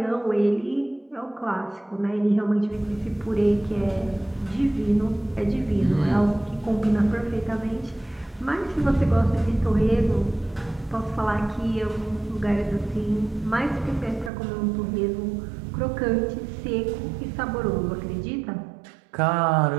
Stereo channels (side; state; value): left; drops out; at 14.3 s